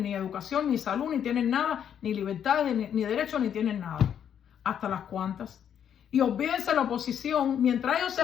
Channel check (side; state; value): right; quieter; 8.9 dB